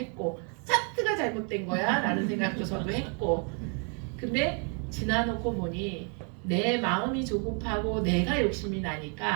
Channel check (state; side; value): quieter; left; 38.8 dB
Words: 차트가 잘못된 거야 라는 생각도 저도 했고 근데 지나놓고 보니 내 마음이 조급하고 내가 욕심이